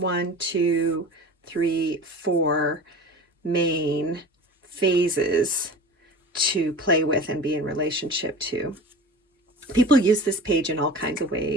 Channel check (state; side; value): normal; both; correlation 0.36